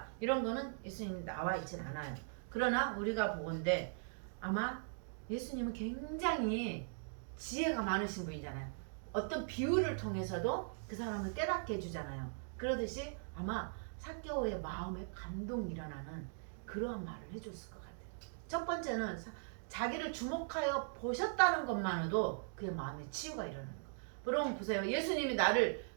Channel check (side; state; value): left; silent; digital silence